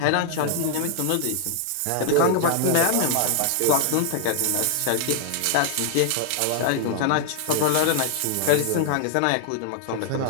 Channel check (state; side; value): different; both; correlation 0.00